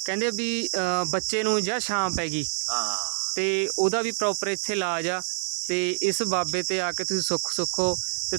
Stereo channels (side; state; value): left; silent; digital silence